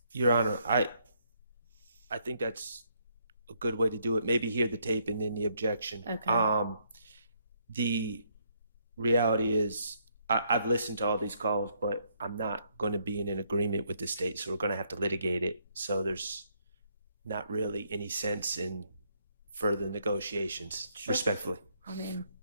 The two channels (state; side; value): inverted; both; correlation -0.72